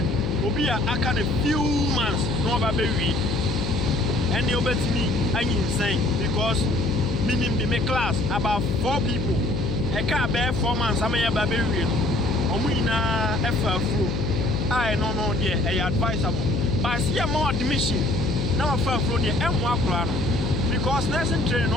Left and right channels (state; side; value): noise; left; hum, 3 dB below the sound